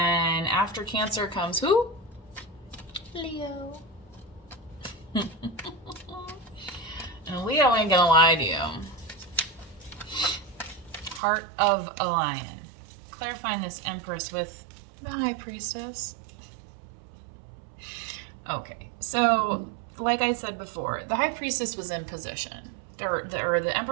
after Cancer comes who? Leo. And Leo ain't gonna lie to you. Heart of a Lion. Clarifying this Empress with the High Priestess. Okay, so like I said before, the High Priestess was in position. Or the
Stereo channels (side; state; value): left; drops out; at 11.2 s